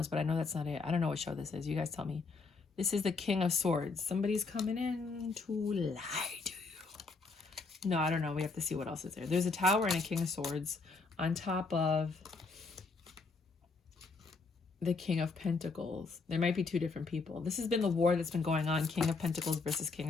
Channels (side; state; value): right; quieter; 4.1 dB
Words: but I know that's not it. I don't know what show this is. You guys tell me. This is the King of Swords. Somebody's coming in to lie to you. No, I don't know. We have to see what else is there. There's a Tower and a King of Swords on top of the King of Pentacles. There might be two different people. This has been the war that's been going on. King of Pentacles versus King